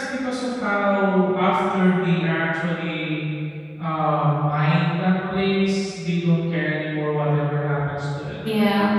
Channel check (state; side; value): identical; both; correlation 1.00